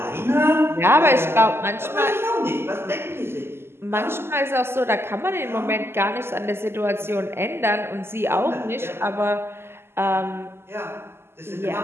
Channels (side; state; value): left; late; 0.12 ms